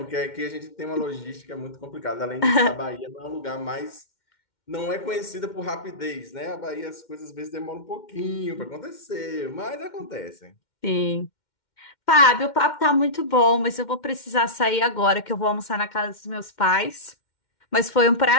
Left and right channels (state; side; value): late; right; 2.1 ms